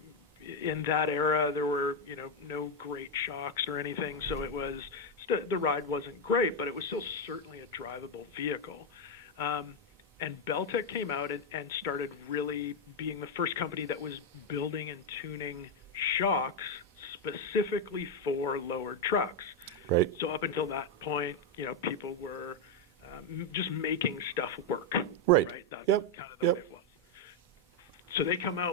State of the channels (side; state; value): both; normal; correlation 0.04